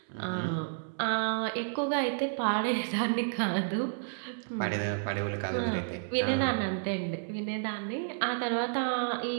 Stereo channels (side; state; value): left; silent; digital silence